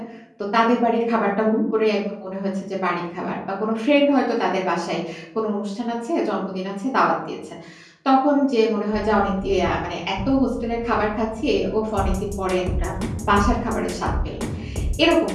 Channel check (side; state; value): both; identical; correlation 1.00